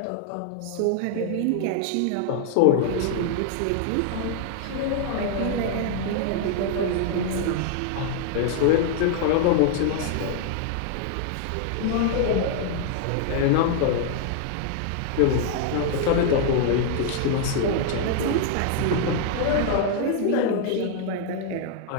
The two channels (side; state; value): both; different; correlation 0.00